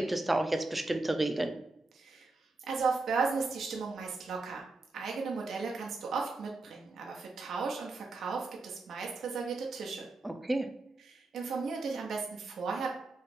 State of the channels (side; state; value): left; quieter; 3.2 dB